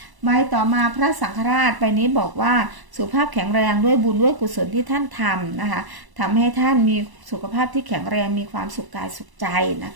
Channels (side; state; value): left; late; 1.0 ms